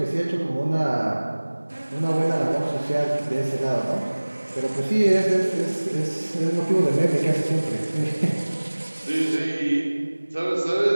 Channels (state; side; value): inverted; both; correlation -1.00